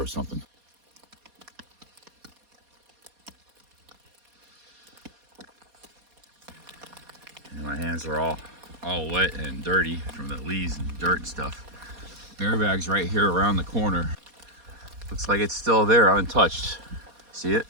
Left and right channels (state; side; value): late; left; 4.2 ms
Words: something. And my hands are all wet and dirty from the leaves and dirt and stuff. Bear bag's right here around the corner. Looks like it's still there, untouched. See it?